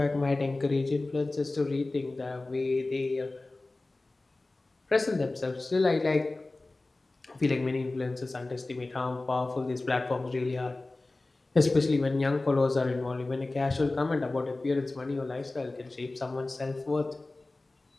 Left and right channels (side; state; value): right; quieter; 3.1 dB